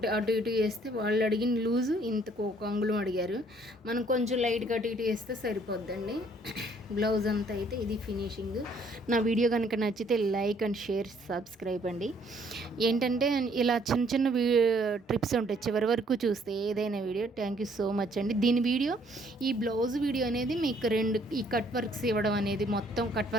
అటు ఇటు వేస్తే వాళ్ళు అడిగిన లూజు ఇంతకు ఒక అంగుళం అడిగారు, మనం కొంచెం లైట్గా అటు ఇటు వేస్తే సరిపోద్దండి. బ్లౌజ్ అంతా అయితే ఇది ఫినిషింగ్. నా వీడియో కనుక నచ్చితే లైక్ అండ్ షేర్, సబ్స్క్రైబ్ అండి. ఏంటంటే ఇలా చిన్న చిన్న ట్రిప్స్ ఉంటాయి, చివరి వరకు చూస్తే ఏదైనా video. Thank you so much అండి. దీని వీడియో, ఈ బ్లౌజ్ వీడియో అనేది మీకు ఈ కట్ వర్క్స్ ఇవ్వడం అనేది, మొత్తం కట్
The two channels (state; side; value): normal; both; correlation 0.63